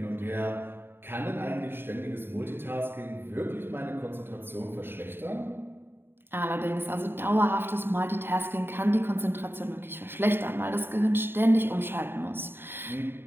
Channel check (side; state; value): left; late; 0.11 ms